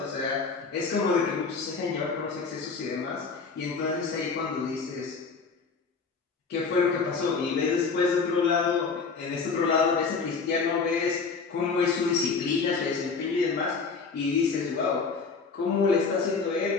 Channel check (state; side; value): quieter; right; 4.9 dB